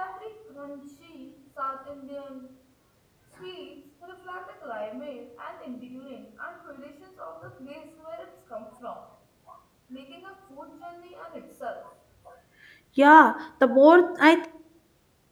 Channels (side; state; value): both; identical; correlation 1.00